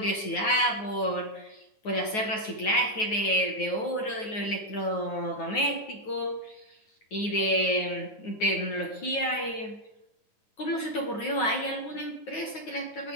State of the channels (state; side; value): late; right; 9.4 ms